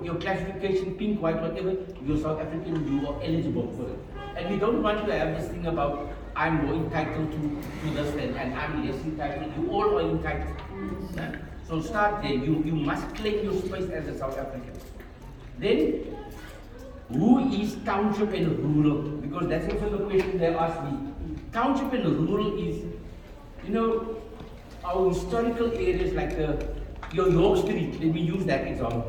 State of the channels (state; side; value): identical; both; correlation 1.00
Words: classification, pink, white, whatever, you're South African, you are eligible for it. And we don't want to have this thing about I'm more entitled to this and I'm less entitled. You all are entitled. Yeah? So start there. You must claim your space as a South African. Then, who is township and rural? Because that's also the question they asked me. Township and rural is, you know, our historical areas like your York Street, let me use that